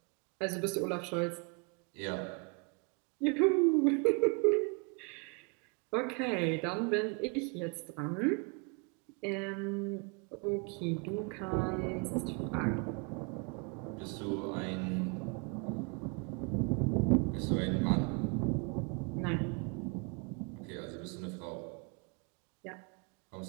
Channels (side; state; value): left; quieter; 33.0 dB